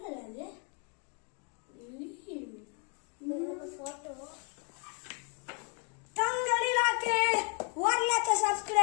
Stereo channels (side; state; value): right; quieter; 39.0 dB